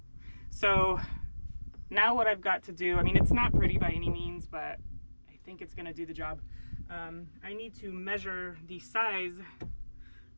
So now what I've got to do, I mean, it's not pretty by any means, but I think it's gonna do the job. I need to measure the size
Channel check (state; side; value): inverted; both; correlation -1.00